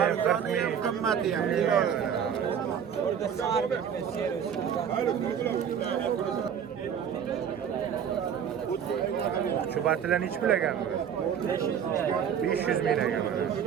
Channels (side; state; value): left; quieter; 8.2 dB